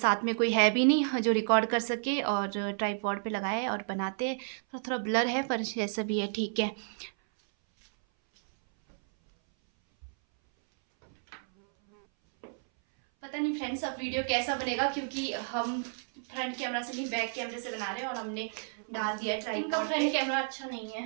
में कोई है भी नहीं जो रिकॉर्ड कर सके और ट्राइपॉड पे लगाए और बनाते। थोड़ा थोड़ा ब्लर है पर जैसा भी है ठीक है। पता नहीं फ्रेंड्स अब वीडियो कैसा बनेगा, क्योंकि हम फ्रंट कैमरा से नहीं बैक कैमरे से बना रहे हैं और हमने डाल दिया ट्राइपॉड। इनका फ्रंट कैमरा अच्छा नहीं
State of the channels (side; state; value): left; silent; 57 dB below the other